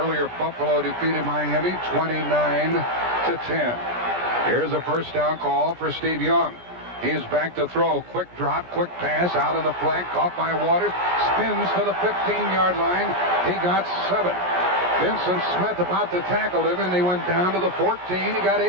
Buffalo defeated Miami 29-10. Here's a first down call for Steve Young. He is back to throw. Quick drop, quick pass out on the flank. Caught by Waters. Spins to the 15-yard line. He got 7. Vincent Smith about to tackle him, and he went down to the 14. He got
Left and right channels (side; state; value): left; late; 17 ms